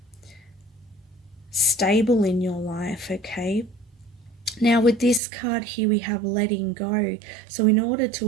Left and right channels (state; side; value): drops out; left; at 5.2 s